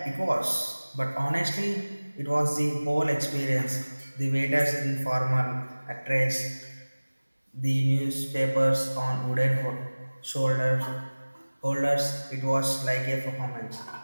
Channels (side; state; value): both; inverted; correlation -1.00